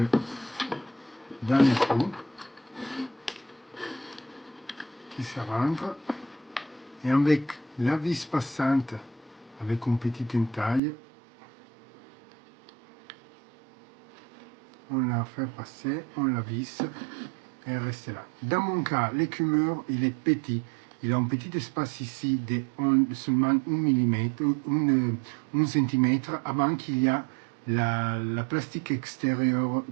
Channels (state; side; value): drops out; left; at 10.8 s